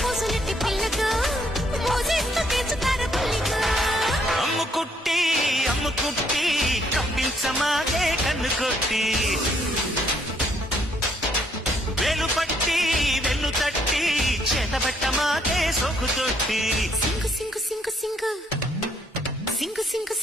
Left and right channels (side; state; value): both; normal; correlation 0.69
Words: పిల్లకు మోజేస్తూ తీర్చుతారు పుల్లికు. అమ్ముకుట్టి కప్పించమాగే కన్ను కొట్టి వేలు పట్టి వెన్ను తట్టి చేతబట్టమాగే సోకు తొట్టి సింగు సింగు సింగు సింగు సింగు సింగు